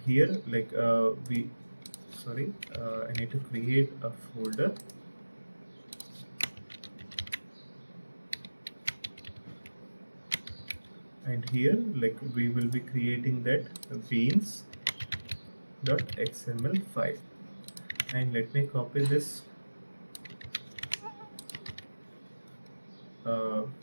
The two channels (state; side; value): inverted; both; correlation -1.00